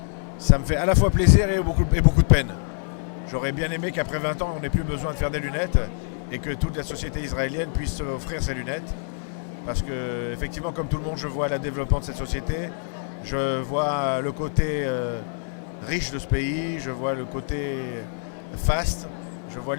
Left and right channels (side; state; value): right; silent; 62 dB below the other